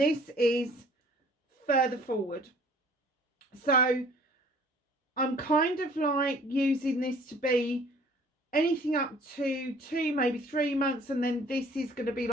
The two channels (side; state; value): both; normal; correlation 0.54